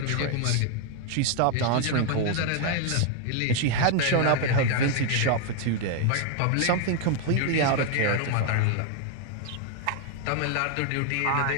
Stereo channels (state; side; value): different; both; correlation 0.00